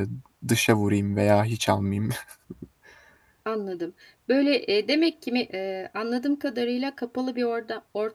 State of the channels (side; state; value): both; identical; correlation 1.00